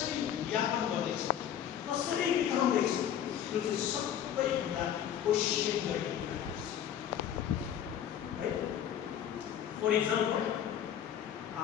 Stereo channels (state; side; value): quieter; right; 9.8 dB